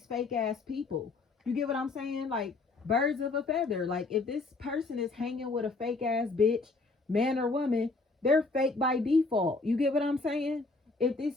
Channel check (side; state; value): right; quieter; 3.6 dB